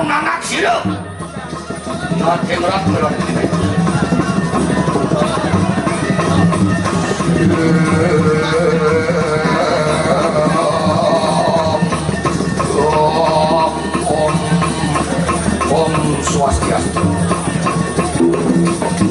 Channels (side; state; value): both; identical; correlation 1.00